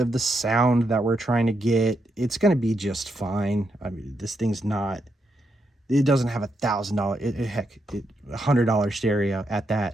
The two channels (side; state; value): both; normal; correlation 0.81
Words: the sound that we're trying to get, it's going to be just fine. I mean, this thing's not, it doesn't have $1,000 stereo at